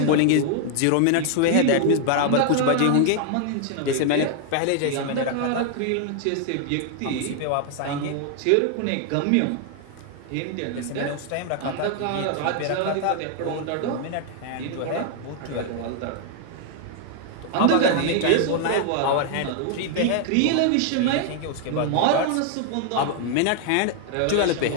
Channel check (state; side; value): different; both; correlation 0.00